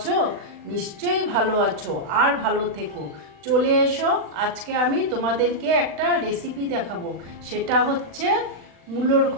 নিশ্চয়ই ভালো আছো, আর ভালো থেকো। চলে এসো, আজকে আমি তোমাদেরকে একটা রেসিপি দেখাবো। সেটা হচ্ছে মূলোর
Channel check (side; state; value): left; late; 40 ms